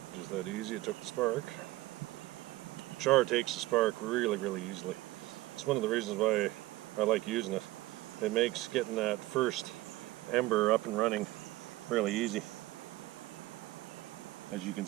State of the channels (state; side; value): quieter; left; 18.3 dB